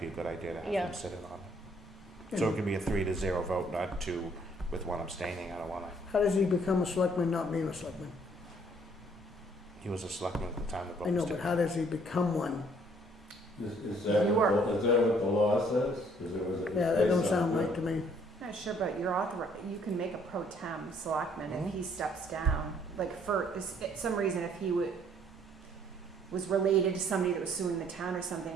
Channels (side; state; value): both; normal; correlation 0.62